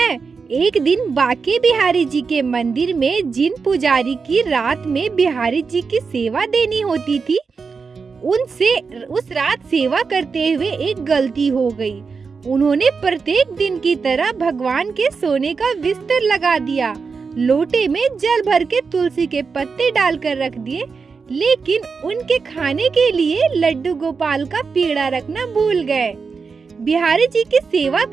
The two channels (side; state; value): left; quieter; 5.1 dB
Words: एक दिन बांके बिहारी जी के मंदिर में जिन पुजारी की रात में बिहारी जी की सेवा देनी होती थी, उनसे उस रात सेवा करते हुए एक गलती हो गई। उन्होंने प्रत्येक दिन की तरह भगवान के सोने का बिस्तर लगा दिया, लोटे में जल भर के तुलसी के पत्ते डालकर रख दिए, लेकिन उनके खाने के लिए लड्डू गोपाल का पेड़ा रखना भूल गए। बिहारी जी की सेवा